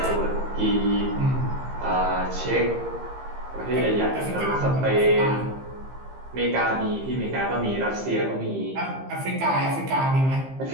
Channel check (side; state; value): left; late; 15 ms